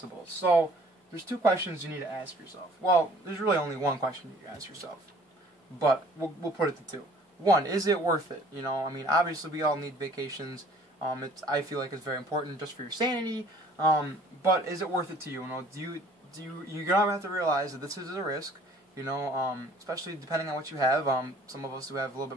So there's two questions you need to ask yourself. Well, there's really only one question you ask yourself, but we'll put it to two. One, is it worth it? Obviously we all need vacations. I feel like it's very important just for your sanity. But is it worth it to you? You're gonna have to realize that this is a risk. Especially depending on what you have. Some of us who have a little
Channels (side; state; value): both; normal; correlation 0.54